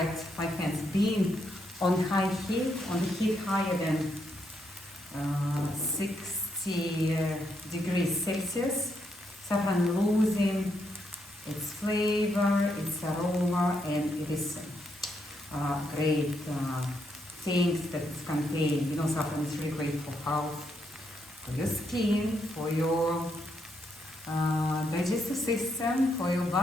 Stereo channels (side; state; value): both; normal; correlation 0.79